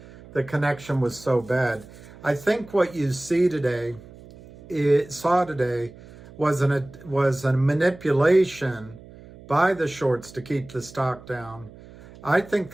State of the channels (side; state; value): right; noise; hum, 20 dB below the sound